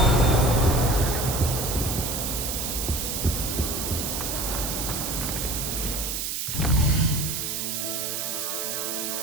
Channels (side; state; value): right; noise; hiss, 2 dB below the sound